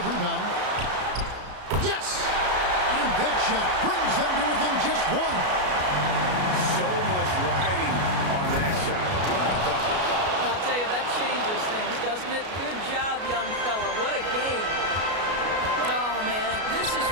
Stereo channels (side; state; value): left; late; 33 ms